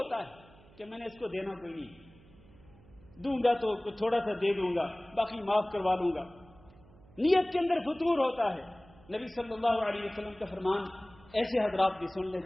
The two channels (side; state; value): right; noise; hum, 25 dB below the sound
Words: ہے کہ میں نے اس کو دینا کوئی نہیں, دوں گا تو تھوڑا سا دے دوں گا, باقی معاف کروا لوں گا. نیت کے اندر فتور ہوتا ہے. نبی صلی اللہ علیہ وسلم کا فرمان ایسے حضرات بھی سن لیں